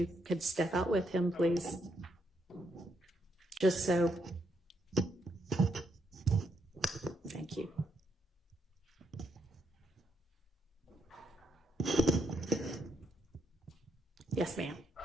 could step out with him, please. Just so. Thank you. Yes, ma'am.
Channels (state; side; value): normal; both; correlation 0.76